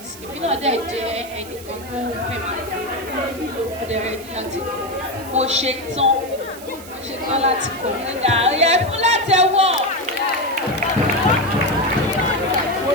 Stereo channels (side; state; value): right; noise; hiss, 17 dB below the sound